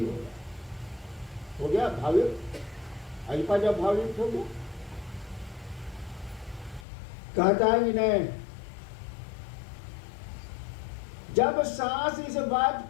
हो गया भावयुक्त। अजपा जब भावयुक्त हो गया, कहता है कि नहीं, जब सांस इस बात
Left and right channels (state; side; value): drops out; right; at 6.9 s